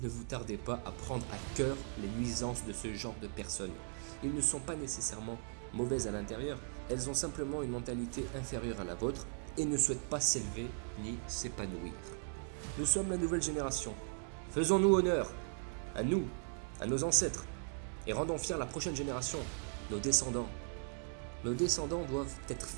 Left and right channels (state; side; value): silent; left; 52 dB below the other